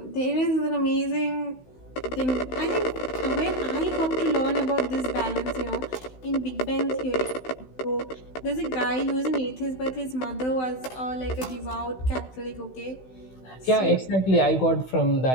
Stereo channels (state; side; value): late; right; 16 ms